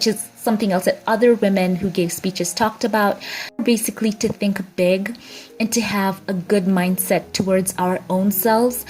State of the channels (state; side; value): identical; both; correlation 1.00